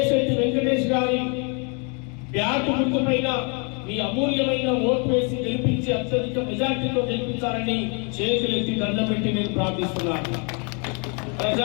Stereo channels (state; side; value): quieter; right; 35.6 dB